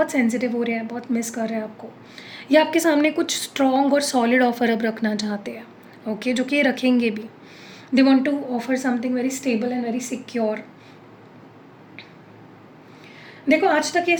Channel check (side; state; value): both; identical; correlation 1.00